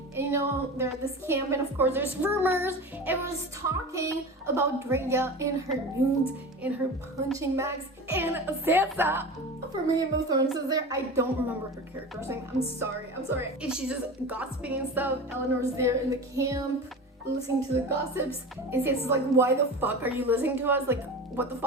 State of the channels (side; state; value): both; normal; correlation 0.30